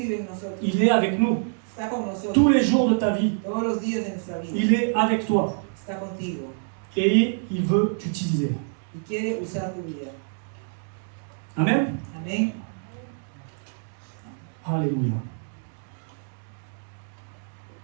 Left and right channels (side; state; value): left; silent; 60 dB below the other